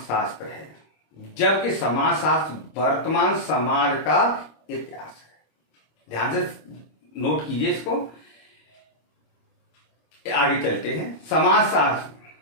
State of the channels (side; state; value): right; late; 26 ms